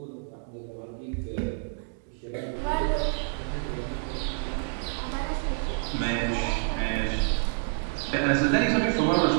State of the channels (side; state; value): left; silent; 59 dB below the other